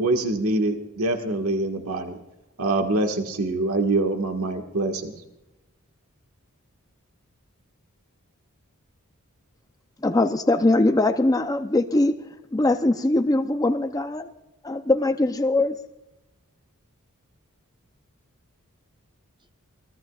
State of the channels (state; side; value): normal; both; correlation 0.61